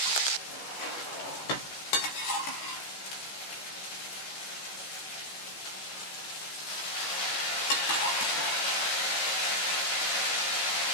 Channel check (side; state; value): right; late; 15 ms